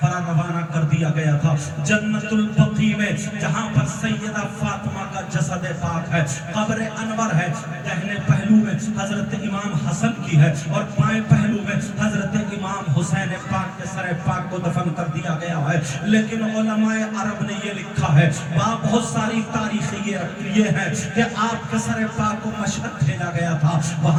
روانہ کر دیا گیا تھا, جنت البقیع میں, جہاں پر سیدہ فاطمہ کا جسد پاک ہے. قبر انور ہے, دہنے پہلو میں حضرت امام حسن کی ہے, اور بائیں پہلو میں حضرت امام حسین پاک کے سر پاک کو دفن کر دیا گیا ہے. لیکن علماء عرب نے یہ لکھا ہے, وہاں بہت ساری تاریخیں یہ ہے کہ آپ کے سر پاک کو مشہد بھیجا گیا تھا,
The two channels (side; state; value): both; identical; correlation 1.00